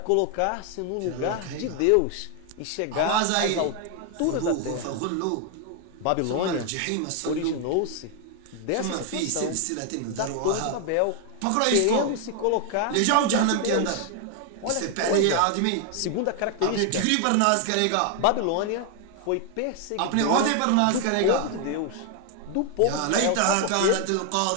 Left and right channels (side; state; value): both; different; correlation 0.00